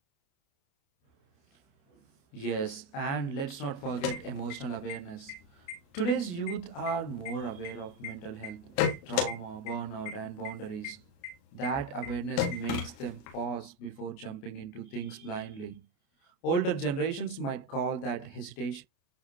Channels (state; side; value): late; right; 29 ms